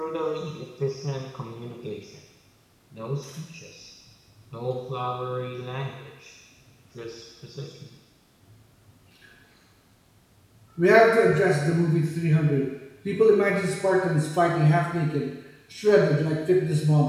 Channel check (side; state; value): both; identical; correlation 1.00